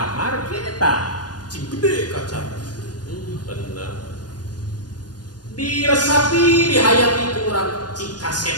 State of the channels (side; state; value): right; late; 0.69 ms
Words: kieu eta. Cing gede kaca. Bener. Diresapi, dihayati ku urang cing kaset